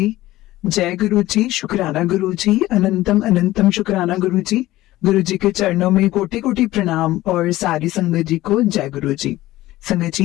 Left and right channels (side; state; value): right; quieter; 16.5 dB